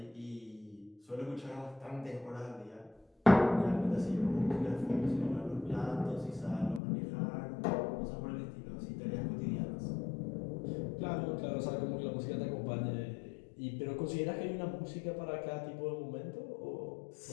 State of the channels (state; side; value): drops out; right; at 6.8 s